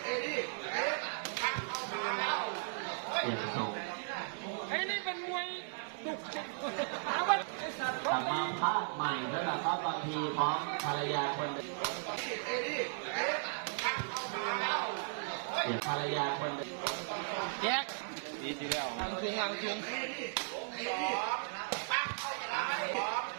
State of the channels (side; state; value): left; silent; 53 dB below the other